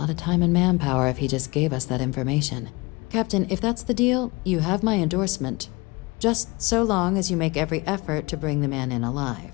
of time and manpower if he just gave us that information. Captain, if that's the deal, you have my endorsement. Just so long as you make every effort to bring the man in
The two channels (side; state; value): right; quieter; 24.7 dB